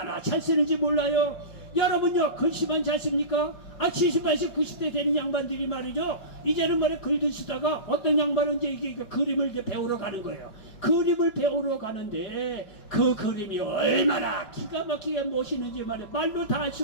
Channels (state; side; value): late; right; 5.4 ms